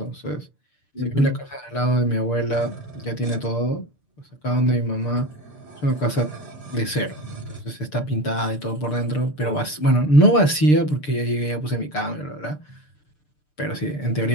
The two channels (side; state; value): right; late; 6.7 ms